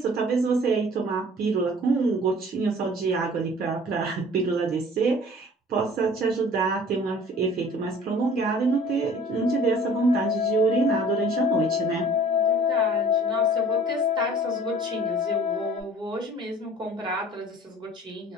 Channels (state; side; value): normal; both; correlation 0.49